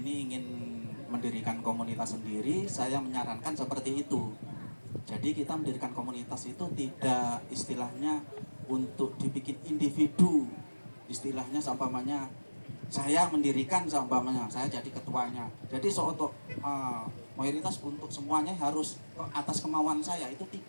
ingin mendirikan komunitas sendiri, saya menyarankan seperti itu. Jadi kita mendirikan komunitas itu tidak istilahnya untuk dibikin individu. Istilahnya seumpamanya saya mendirikan, seumpamanya saya jadi ketuanya. Jadi untuk mayoritas untuk semuanya harus atas kemauan saya, itu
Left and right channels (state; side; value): inverted; both; correlation -1.00